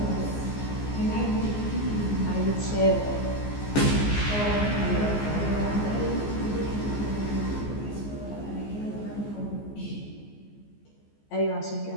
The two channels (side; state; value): right; late; 14 ms